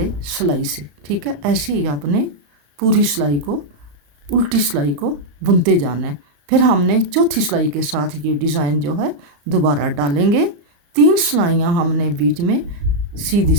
सिलाई से। ठीक है, ऐसे ही आपने पूरी सिलाई को, उल्टी सिलाई को बुनते जाना है। फिर हमने चौथी सिलाई के साथ ये डिज़ाइन जो है दोबारा डालेंगे। 3 सिलाइयाँ हमने बीच में सीधी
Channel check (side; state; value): left; late; 34 ms